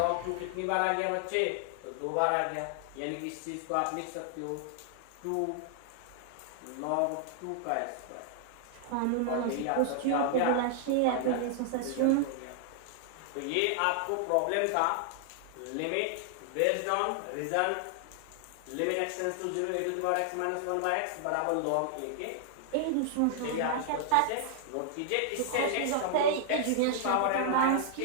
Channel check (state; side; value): different; both; correlation -0.01